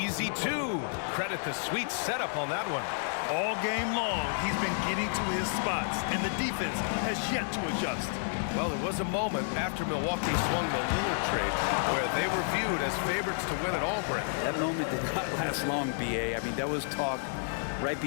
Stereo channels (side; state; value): right; silent; digital silence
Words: 2. Credit the sweet setup on that one. All game long, he's been getting to his spots, and the defense has yet to adjust. Well, there was a moment after Milwaukee swung the Lillard trade where they were viewed as favorites to win it all, Brent. That moment did not last long, B.A. I mean, that was talk right